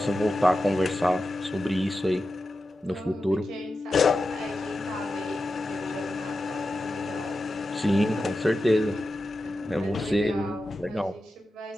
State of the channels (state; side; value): normal; both; correlation 0.91